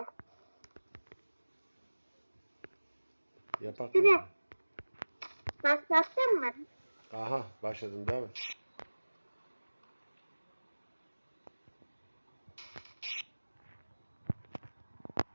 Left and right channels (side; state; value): both; inverted; correlation -1.00